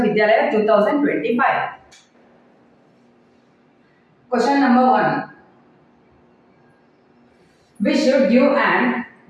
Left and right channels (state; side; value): identical; both; correlation 1.00